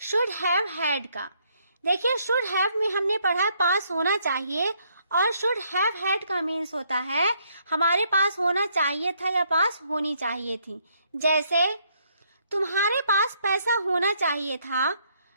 शुड हैव हैड का। देखिए शुड हैव में हमने पढ़ा है पास होना चाहिए, और शुड हैव हैड का मीन्स होता है हमारे पास होना चाहिए था या पास होनी चाहिए थी। जैसे तुम्हारे पास पैसा होना चाहिए था,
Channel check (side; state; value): both; inverted; correlation -0.70